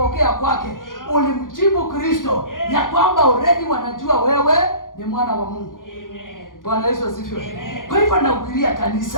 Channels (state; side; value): late; right; 0.89 ms